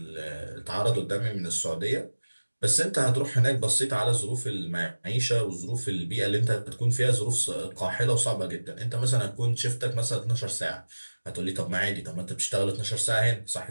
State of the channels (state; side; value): inverted; both; correlation -1.00